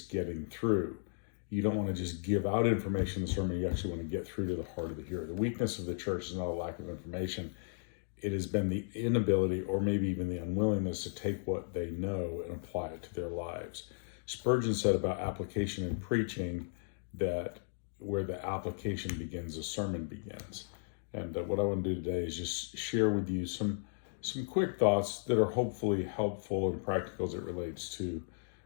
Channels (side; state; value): right; silent; digital silence